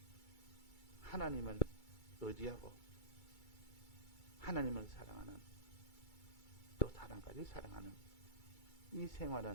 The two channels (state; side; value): late; right; 2.3 ms